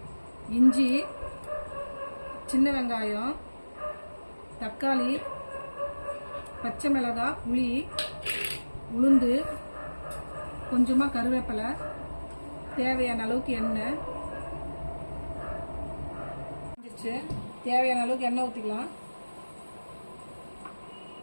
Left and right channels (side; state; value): both; inverted; correlation -1.00